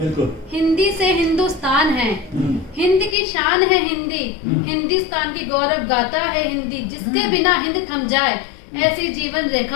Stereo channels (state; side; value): drops out; right; at 3.2 s